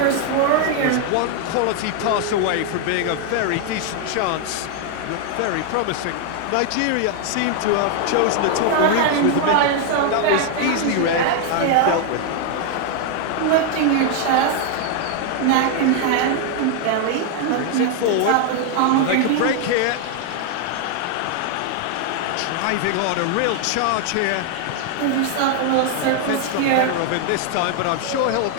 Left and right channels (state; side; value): different; both; correlation 0.00